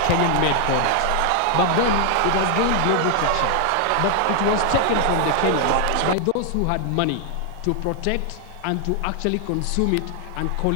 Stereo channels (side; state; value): both; different; correlation 0.00